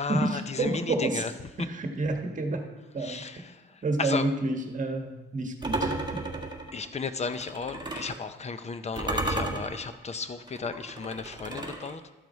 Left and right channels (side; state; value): both; normal; correlation 0.49